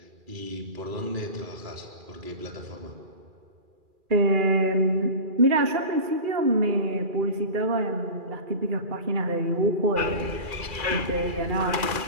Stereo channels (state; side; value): late; left; 2.4 ms